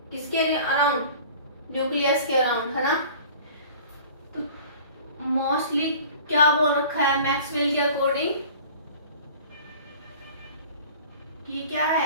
किसके अराउंड, न्यूक्लियस के अराउंड, है ना। तो मोस्टली क्या बोल रखा है मैक्सवेल के अकॉर्डिंग कि क्या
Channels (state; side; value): inverted; both; correlation -0.45